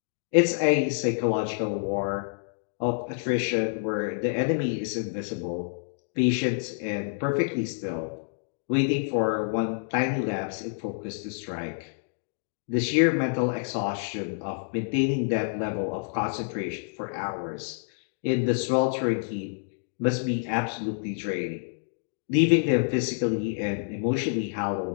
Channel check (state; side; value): silent; right; digital silence